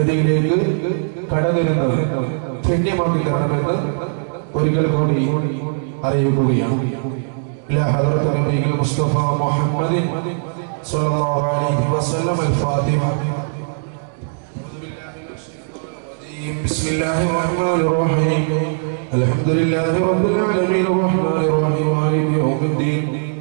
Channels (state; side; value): silent; left; digital silence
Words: കടന്നിരുന്നത് ധന്യമാക്കി തരണമെന്ന് ഒരിക്കൽ കൂടി അറിയിക്കുകയാണ്. إلى حضرة النبي المصطفى محمد صلى الله عليه وسلم الفاتحة. بسم الله الرحمن الرحيم. الحمد لله رب العالمين الرحمن الرحيم مالك يوم الدين.